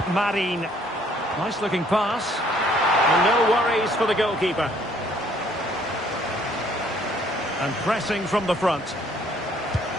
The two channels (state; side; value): normal; both; correlation 0.62